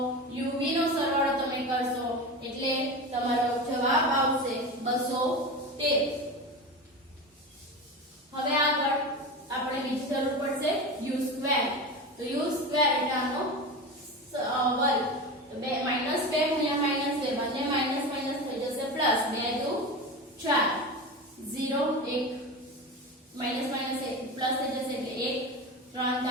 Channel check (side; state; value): both; normal; correlation 0.25